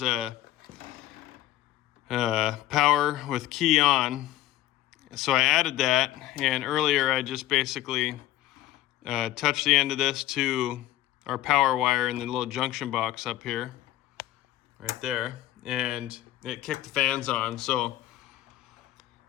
power with key on. So I added that, and earlier I just basically touched the end of this to our power wire in the little junction box up here, right there, and it kicked the fans on. So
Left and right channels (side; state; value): right; quieter; 14.5 dB